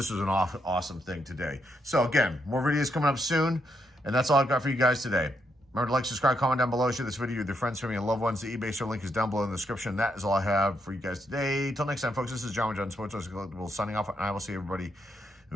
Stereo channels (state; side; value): normal; both; correlation 0.79